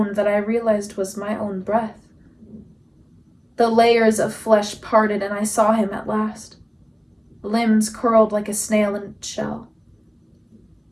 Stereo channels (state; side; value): identical; both; correlation 1.00